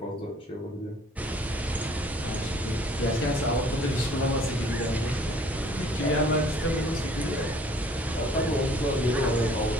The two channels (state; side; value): normal; both; correlation 0.55